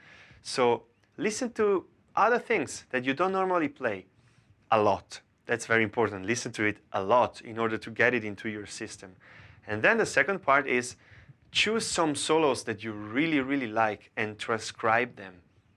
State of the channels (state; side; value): identical; both; correlation 1.00